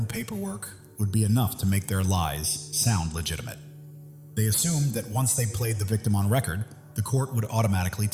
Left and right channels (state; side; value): identical; both; correlation 1.00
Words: paperwork would be enough to make their lies sound legitimate. They assumed that once they played the victim on record, the court would automatically